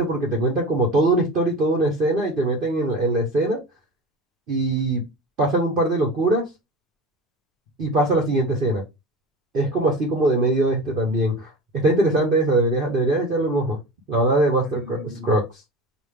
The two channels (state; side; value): normal; both; correlation 0.31